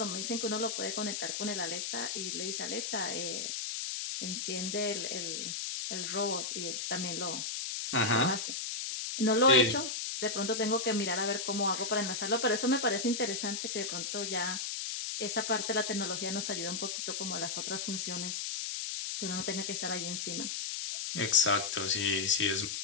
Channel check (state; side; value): noise; left; hiss, 3 dB below the sound